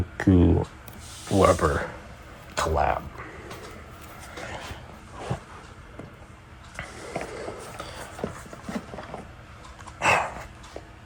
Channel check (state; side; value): identical; both; correlation 1.00